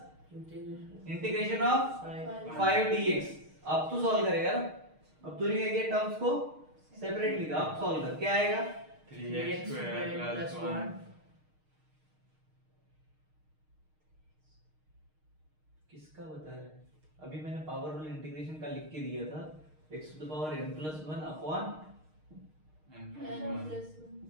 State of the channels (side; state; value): left; late; 6.5 ms